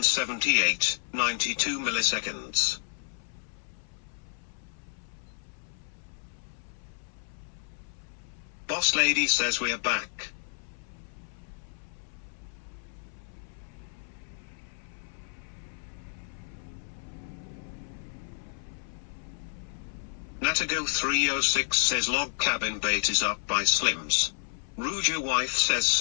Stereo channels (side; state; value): right; silent; 57 dB below the other